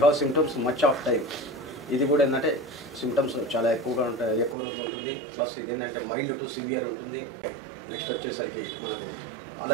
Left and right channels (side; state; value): left; drops out; at 4.5 s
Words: have symptoms much of time. ఇది కూడా ఏంటంటే సిమ్టమ్స్ చాలా ఎక్కువగా ఉంటాయి, ఎక్కువ రోజులు ఉంటుంది. ప్లస్ ఇది ఏంటంటే మైల్డ్ టు సివియర్ ఉంటుంది. నెక్స్ట్ వచ్చేసరికి మనకు